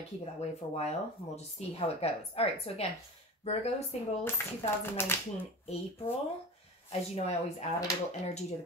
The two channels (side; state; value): both; normal; correlation 0.32